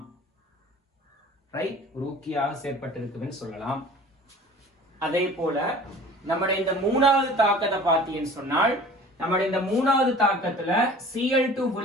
ரைட்? ஒரு ஊக்கியாக செயற்பட்டிருக்குதுன்னு சொல்லலாம். அதே போல நம்முடைய இந்த மூணாவது தாக்கத்தை பார்த்தீங்கன்னு சொன்னால், நம்முடைய இந்த மூணாவது தாக்கத்துல Cl2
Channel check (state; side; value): normal; both; correlation 0.45